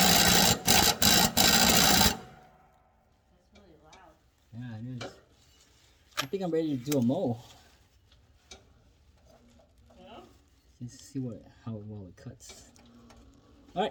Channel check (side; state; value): both; identical; correlation 1.00